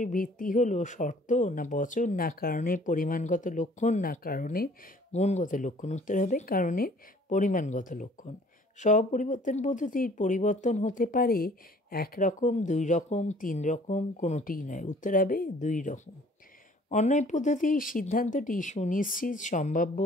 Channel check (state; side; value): normal; both; correlation 0.54